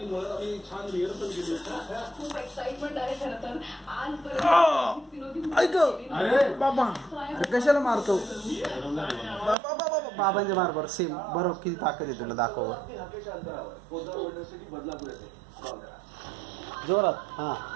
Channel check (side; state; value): left; drops out; at 9.6 s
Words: मुळात आम्ही छान रिहर्सल केली. खूप एक्साइटमेंट आहे खरं तर आजपर्यंत. ऐक बाबा कशाला मारतो बाबांच्या मार बरं सेम बरोबर किती ताकद आहे तुला दाखव जोरात हा